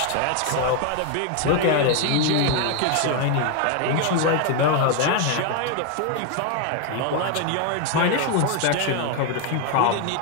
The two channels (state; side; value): different; both; correlation 0.01